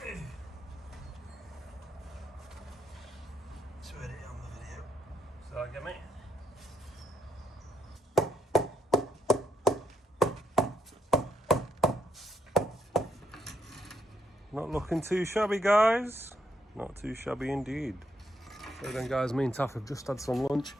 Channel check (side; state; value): both; normal; correlation 0.77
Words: It's ready on the video. So I get me. Not looking too shabby, guys. Not too shabby indeed. So then, guys, me and Taff have just had some lunch.